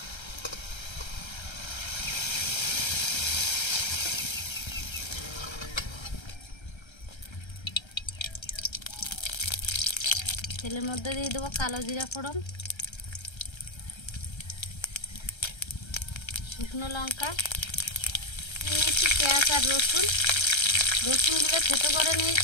তেলের মধ্যে দিয়ে দেবো কালো জিরা ফোড়ন, শুকনো লঙ্কা নিয়েছি, পেঁয়াজ আর রসুনগুলো থেতো করে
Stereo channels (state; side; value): late; right; 1.3 ms